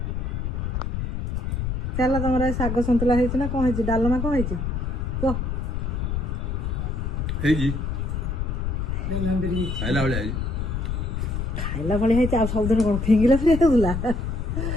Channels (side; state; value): left; noise; rumble, 2 dB below the sound